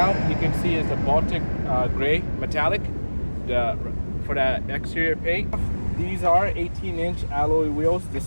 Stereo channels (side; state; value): both; inverted; correlation -1.00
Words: you can see is the Baltic gray metallic for the exterior paint. These are 18-inch alloy wheels.